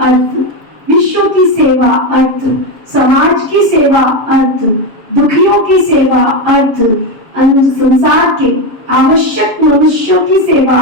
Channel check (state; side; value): late; left; 7.2 ms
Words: विश्व की सेवा अर्थ, समाज की सेवा अर्थ, दुखियों की सेवा अर्थ, संसार के आवश्यक मनुष्यों की सेवा